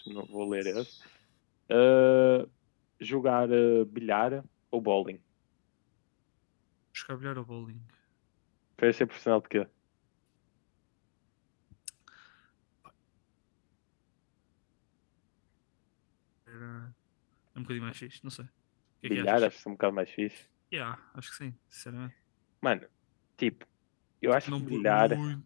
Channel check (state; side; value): silent; right; digital silence